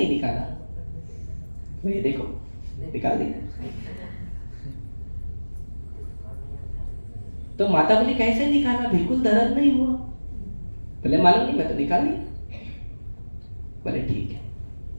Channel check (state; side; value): inverted; both; correlation -1.00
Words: निकाला? ये देखो निकाल दिया। तो माता बोली कैसे निकाला, बिल्कुल दर्द नहीं हुआ? बोले मालूम नहीं, मैं तो निकाल लिया। बोले ठीक है।